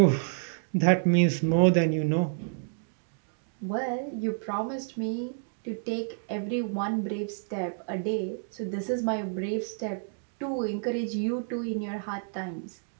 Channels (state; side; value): silent; left; digital silence